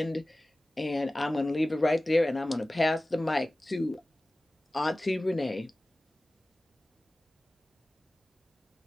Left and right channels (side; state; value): both; normal; correlation 0.97